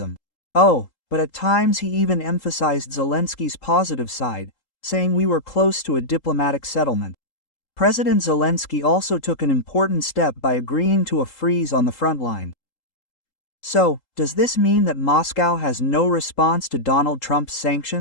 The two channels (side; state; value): right; late; 3.8 ms